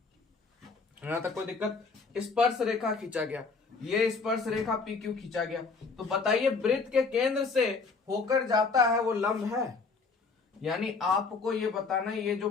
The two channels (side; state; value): right; quieter; 4.5 dB